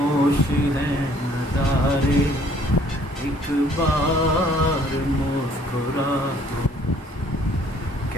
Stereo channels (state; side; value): normal; both; correlation 0.60